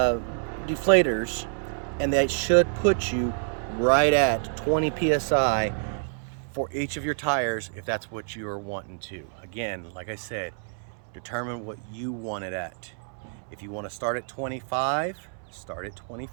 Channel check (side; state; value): left; silent; 60 dB below the other